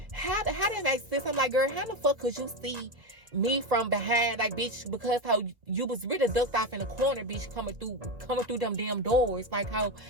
how that make sense? I'm like, girl, how the fuck could you see me from behind? Like, bitch, because how you was really ducked off in the corner, bitch, coming through them damn doors. Like how,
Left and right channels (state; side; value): late; left; 1.7 ms